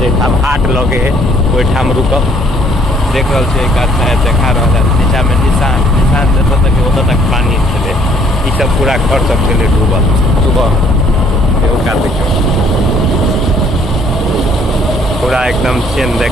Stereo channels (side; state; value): both; normal; correlation 0.63